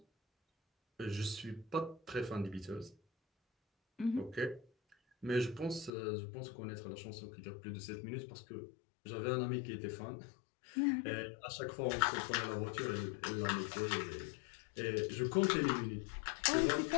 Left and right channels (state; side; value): drops out; right; at 5.9 s